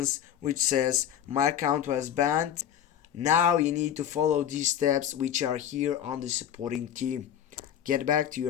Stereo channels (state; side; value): quieter; right; 9.8 dB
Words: which says my account was banned. Now you need to follow these steps which are here on the supporting team. Get back to